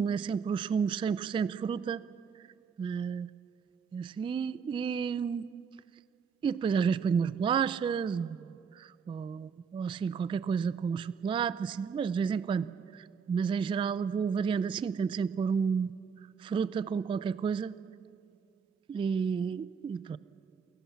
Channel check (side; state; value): left; quieter; 6.2 dB